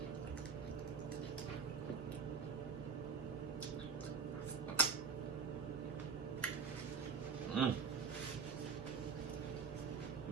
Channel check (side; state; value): left; quieter; 5.4 dB